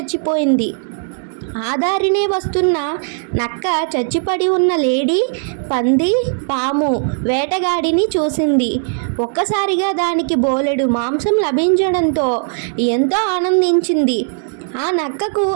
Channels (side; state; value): left; silent; 60 dB below the other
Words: ఆ దారినే వస్తున్న నక్క చచ్చిపడి ఉన్న లేడీ, పంది, పాము, వేటగాడిని చూసింది. ఒక్కసారిగా దానికి బోలెడు మాంసం లభించడంతో ఎంతో ఆనందించింది. ఆ నక్కకు